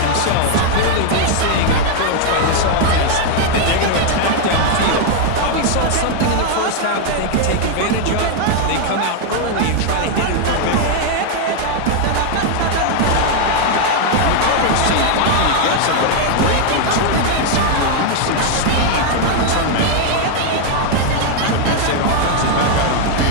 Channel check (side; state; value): both; different; correlation 0.00